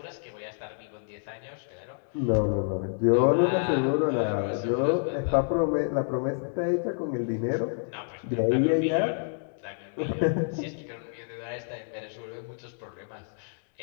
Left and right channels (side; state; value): right; silent; digital silence